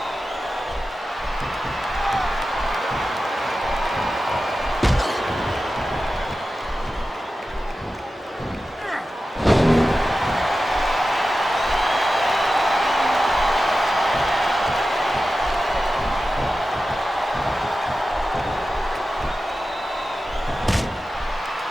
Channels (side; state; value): both; normal; correlation 0.93